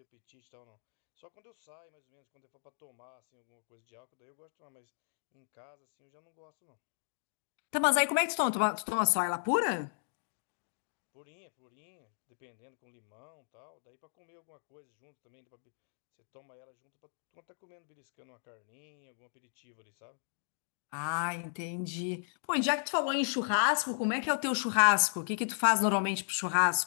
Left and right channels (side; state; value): right; silent; digital silence